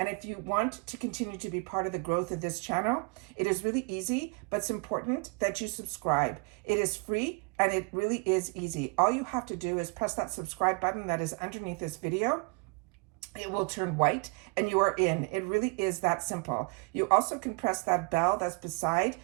if you want to continue to be part of the growth of this channel, it is really easy, but it's important that you subscribe. It is free and it really is easy. All you have to do is press that subscribe button that is underneath this video. it will turn white and you are in. It really is that simple. You also can press that bell that's beside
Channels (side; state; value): left; quieter; 33.0 dB